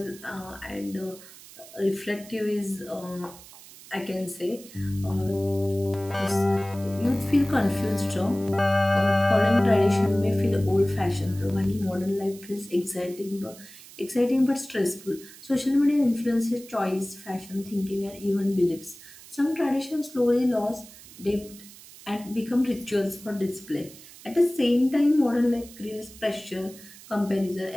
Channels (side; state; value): right; noise; hiss, 19 dB below the sound